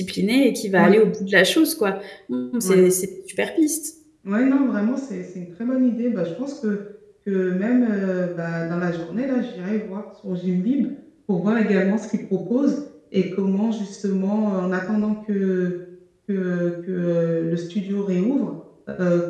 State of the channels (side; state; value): both; identical; correlation 1.00